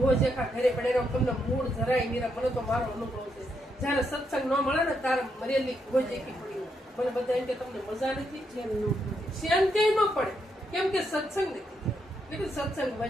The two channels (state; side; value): normal; both; correlation 0.79